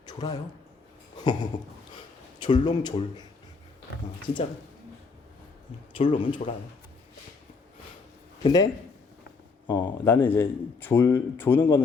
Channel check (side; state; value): right; quieter; 4.5 dB